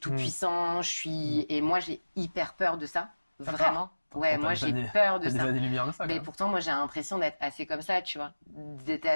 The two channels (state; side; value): inverted; both; correlation -1.00